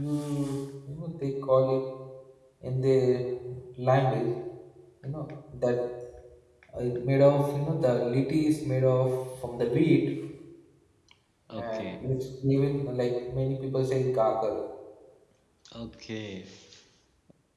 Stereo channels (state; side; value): identical; both; correlation 1.00